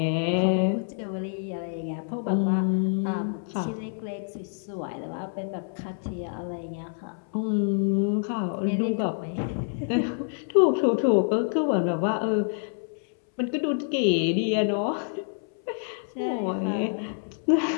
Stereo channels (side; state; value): right; silent; 60 dB below the other